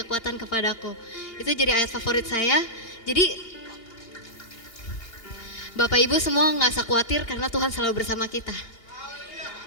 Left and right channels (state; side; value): late; right; 2.8 ms